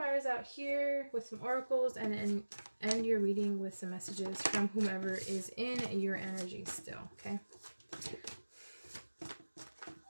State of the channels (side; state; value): both; inverted; correlation -1.00